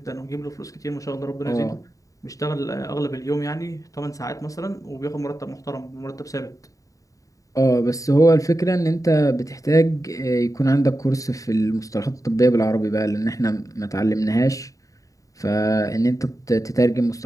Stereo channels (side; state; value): right; late; 0.16 ms